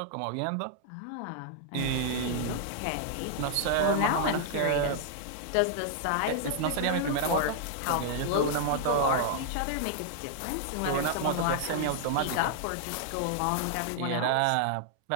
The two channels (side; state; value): both; different; correlation -0.01